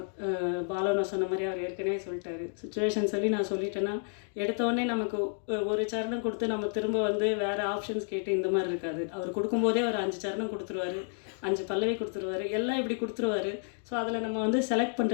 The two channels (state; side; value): silent; right; 57 dB below the other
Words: பாலனா சொன்ன மாதிரி அவர் ஏற்கனவே சொல்லிட்டாரு. சுச்சுவேஷன் சொல்லி நான் சொல்லிட்டேன்னா எடுத்தோடனே நமக்கு ஒரு சரணம் கொடுத்து நம்ம திரும்ப வந்து வேறு ஆப்ஷன்ஸ் கேட்டு இந்த மாதிரி இருக்காது. அவர் கொடுக்கும்போதே ஒரு 5 சரணம் கொடுத்துருவாரு, 5 பல்லவி கொடுத்துருவாரு, எல்லாம் இப்படி கொடுத்துருவாரு. ஸோ அதில் நம்ம வந்து செலக்ட்